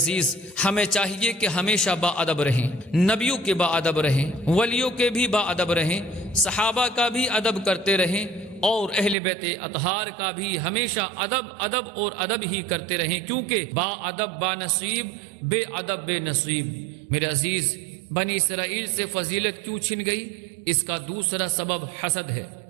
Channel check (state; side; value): drops out; left; at 9.2 s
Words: ہمیں چاہیے کہ ہمیشہ با ادب رہیں، نبیوں کے با ادب رہیں، ولیوں کے بھی با ادب رہیں، صحابہ کا بھی ادب کرتے رہیں، اور اہل بیت اطہار کا بھی ہمیشہ ادب اور ادب ہی کرتے رہیں، کیونکہ با ادب با نصیب، بے ادب بے نصیب۔ میرے عزیز، بنی اسرائیل سے فضیلت کیوں چھن گئی؟ اس کا دوسرا سبب حسد ہے۔